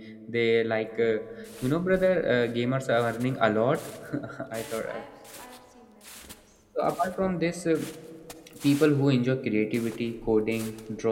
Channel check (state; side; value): identical; both; correlation 1.00